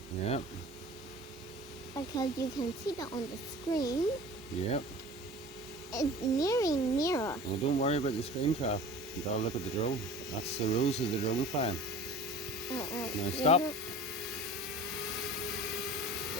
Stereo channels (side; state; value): both; normal; correlation 0.40